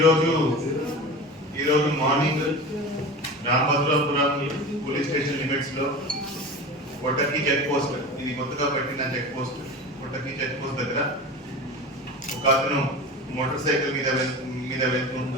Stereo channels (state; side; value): normal; both; correlation 0.32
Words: morning Ramabhadrapuram police station limits లో కొట్టకి చెక్ పోస్ట్, ఇది కొత్తగా పెట్టిన చెక్ పోస్ట్, కొట్టకి చెక్ పోస్ట్ దగ్గర ఒక అతను మోటార్ సైకిల్ మీద